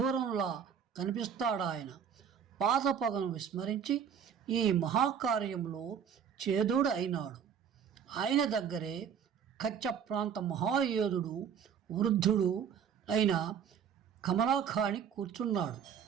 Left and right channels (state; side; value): quieter; left; 7.8 dB